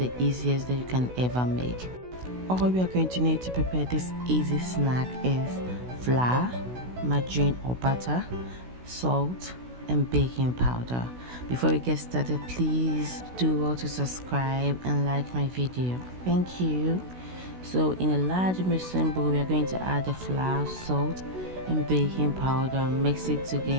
easiest that you can ever make. All we are going to need to prepare this easy snack is flour, margarine or butter, salt and baking powder. Before we get started, please do well to subscribe and like my video. Thank you. So in a large mixing bowl, we are going to add the flour, salt and baking powder. Mix it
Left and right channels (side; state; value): left; late; 16 ms